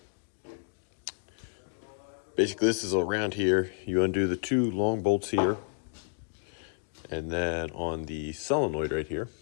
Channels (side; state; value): right; silent; 57 dB below the other